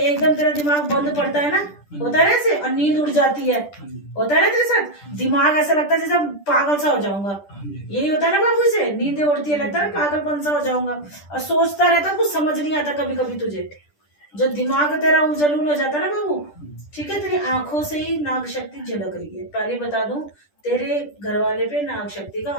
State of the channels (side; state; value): right; late; 10 ms